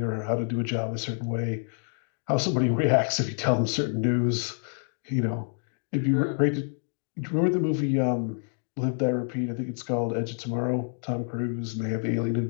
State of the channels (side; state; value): right; silent; 60 dB below the other